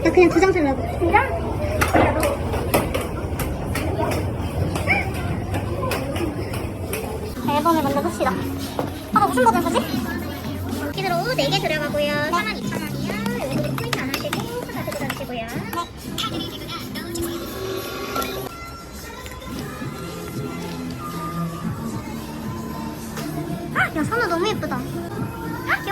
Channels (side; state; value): both; identical; correlation 1.00